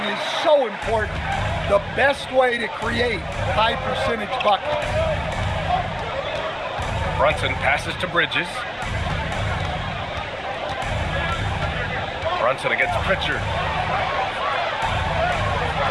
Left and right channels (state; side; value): identical; both; correlation 1.00